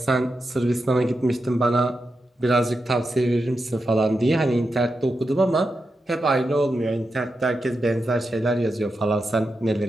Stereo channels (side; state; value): both; normal; correlation 0.88